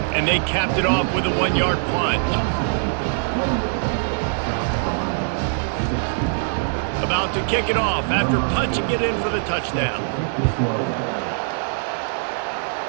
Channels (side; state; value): left; silent; 60 dB below the other